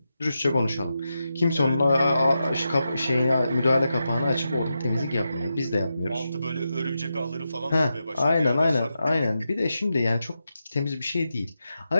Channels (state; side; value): inverted; both; correlation -0.88